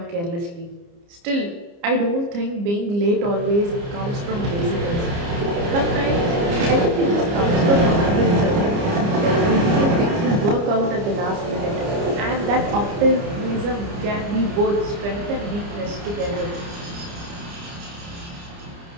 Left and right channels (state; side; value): late; left; 29 ms